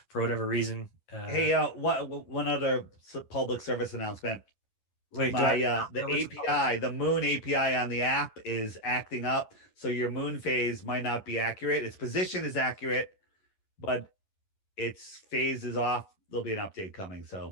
for whatever reason... Hey, one other public service announcement. Wait, the API, the Moon API on the app is acting up, so your moon phase might not be accurate. Its position is accurate, but its phase is off. There'll be an update coming,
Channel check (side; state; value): right; late; 11 ms